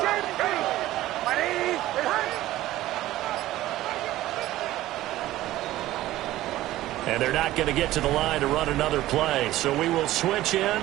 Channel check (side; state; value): left; quieter; 15.4 dB